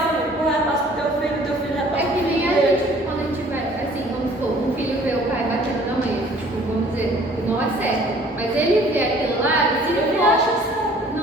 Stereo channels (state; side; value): normal; both; correlation 0.54